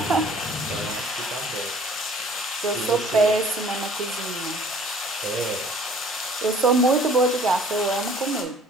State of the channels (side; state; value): both; normal; correlation 0.53